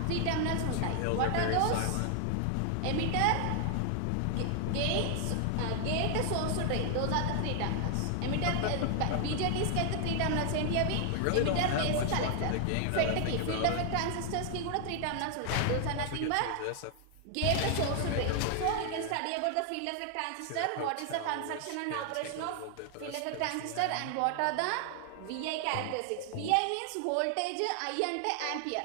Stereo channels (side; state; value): both; different; correlation 0.00